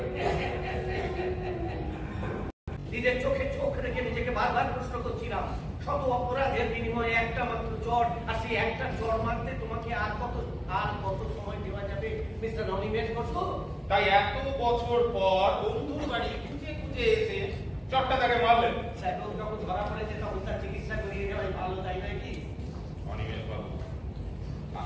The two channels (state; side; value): identical; both; correlation 1.00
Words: নিজের চোখে চোখ রেখে নিজেকে বারবার প্রশ্ন করছিলাম, শত অপরাধের বিনিময়ে একটা মাত্র চর, আর সেই একটা চর মারতে তোমাকে আর কত সময় দেওয়া যাবে মিস্টার অনিমেষ বসু? তাই এত বছর পর বন্ধুর বাড়ি খুঁজে খুঁজে এসে চটটা তাকে মারলেন। স্যার যখন ধরা পড়েছে তখন তার চিকিৎসা করিয়ে দেওয়াই ভালো, তাই নয় কি? অনিমেষ বাবু,